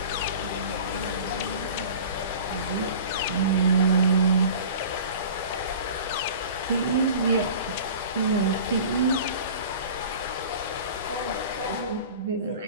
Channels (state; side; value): inverted; both; correlation -0.40